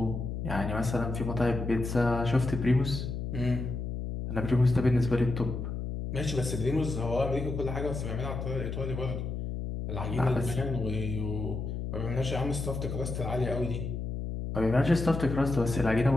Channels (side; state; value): left; noise; hum, 4 dB below the sound